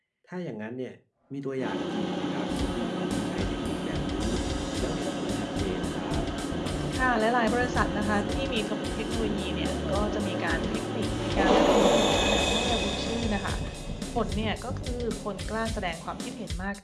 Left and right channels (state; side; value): identical; both; correlation 1.00